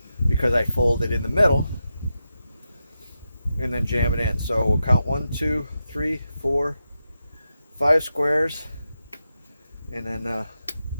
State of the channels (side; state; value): both; inverted; correlation -0.88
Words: because I fold it in the middle and then jam it in. So we'll count 1, 2, 3, 4, 5 squares, and then